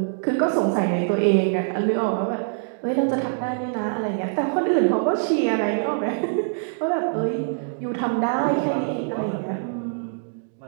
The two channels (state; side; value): silent; left; digital silence